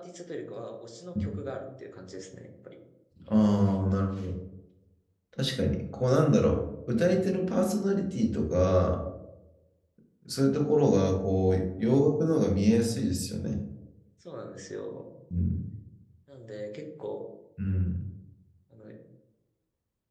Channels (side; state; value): both; identical; correlation 1.00